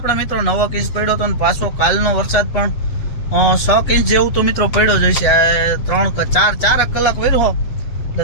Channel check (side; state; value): right; late; 8.0 ms